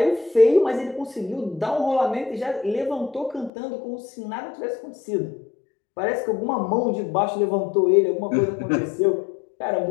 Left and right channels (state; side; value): drops out; right; at 3.5 s